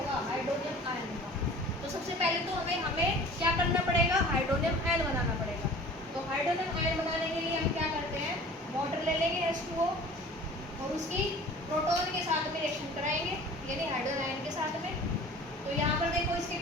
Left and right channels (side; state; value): both; normal; correlation 0.44